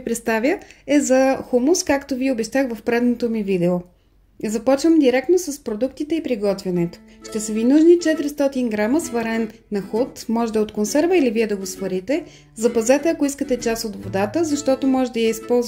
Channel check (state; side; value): identical; both; correlation 1.00